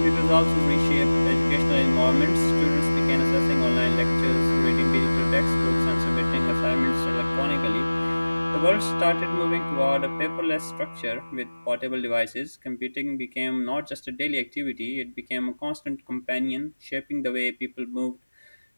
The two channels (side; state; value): both; inverted; correlation -1.00